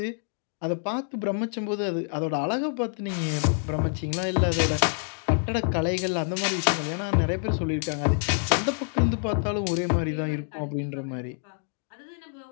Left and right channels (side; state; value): right; silent; 55 dB below the other